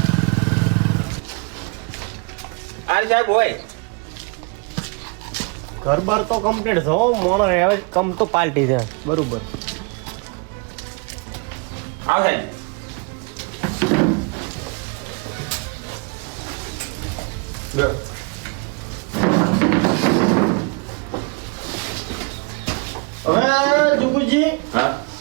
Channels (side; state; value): left; quieter; 33.0 dB